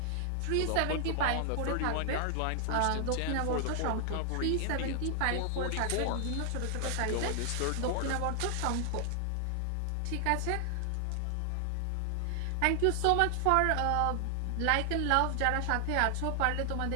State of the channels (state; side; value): different; both; correlation 0.00